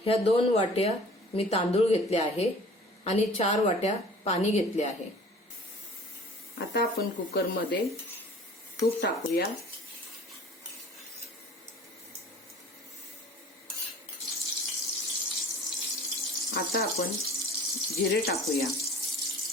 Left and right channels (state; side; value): normal; both; correlation 0.47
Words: ह्या 2 वाट्या मी तांदूळ घेतले आहे आणि 4 वाट्या पाणी घेतले आहे। आता आपण कुकरमध्ये तूप टाकूया। आता आपण जिरे टाकूया,